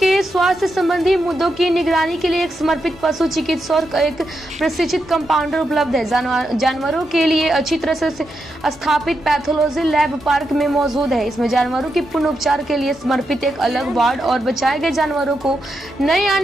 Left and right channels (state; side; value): normal; both; correlation 0.84